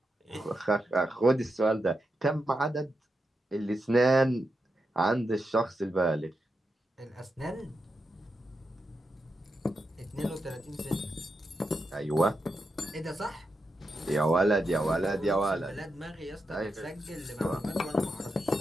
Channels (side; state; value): both; normal; correlation 0.86